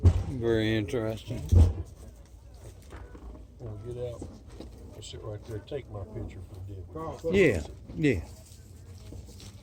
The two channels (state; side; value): identical; both; correlation 1.00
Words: Very interesting. I'll get out. I'll sit right there. Take my picture for the deal. Yeah, yeah.